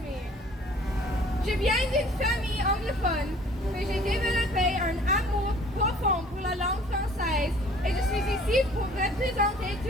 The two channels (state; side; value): normal; both; correlation 0.52